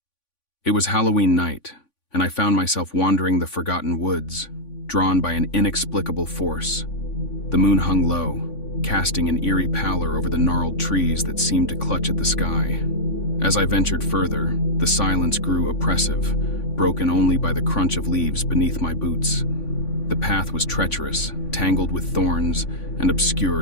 It was Halloween night, and I found myself wandering the forgotten woods, drawn by an inexplicable force. The moon hung low, casting an eerie pallor over the gnarled trees that seemed to clutch at the sky. As I ventured further, the silence grew oppressive, broken only by the crunch of leaves beneath my boots. The path was treacherous, tangled with thorns, and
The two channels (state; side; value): late; right; 3.5 ms